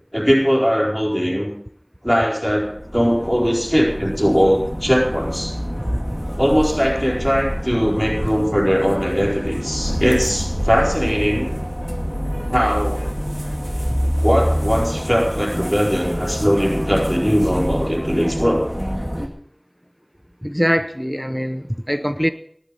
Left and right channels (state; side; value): identical; both; correlation 1.00